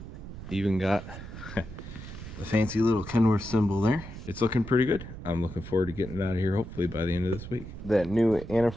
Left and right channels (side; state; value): right; noise; rumble, 12 dB below the sound